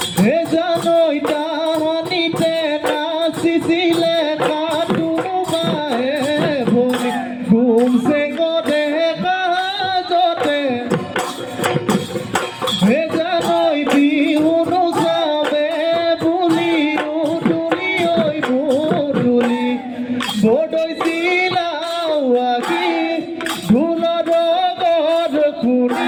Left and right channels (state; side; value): identical; both; correlation 1.00